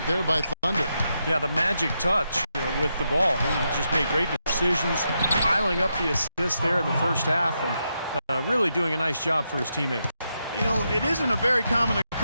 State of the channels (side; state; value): both; inverted; correlation -0.84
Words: there by Thunder. Yeah, the magic touch with the ball. He just made great decisions, piling up the assists there in the first half, and really doing a nice job for his teammates. You know, it isn't a very common